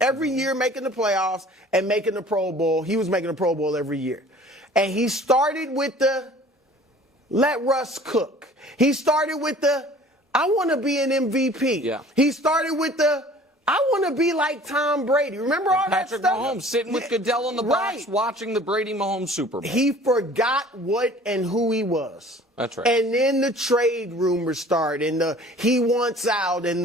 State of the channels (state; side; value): normal; both; correlation 0.48